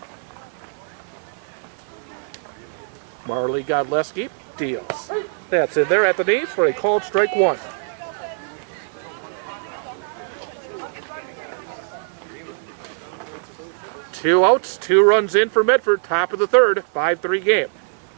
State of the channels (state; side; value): silent; left; 55 dB below the other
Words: Marley Godleski deals. That's in there at the knees for a called strike 1. Two outs, 2 runs in for Medford, top of the 3rd, 5-3 game.